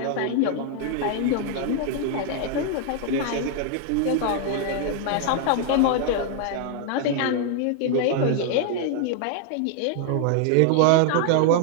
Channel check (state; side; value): different; both; correlation 0.00